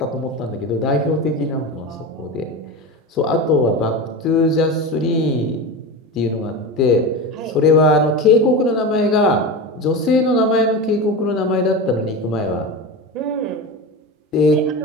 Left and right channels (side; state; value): both; normal; correlation 0.24